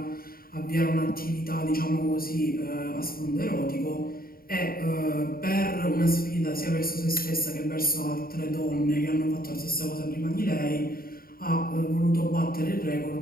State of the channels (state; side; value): late; right; 0.43 ms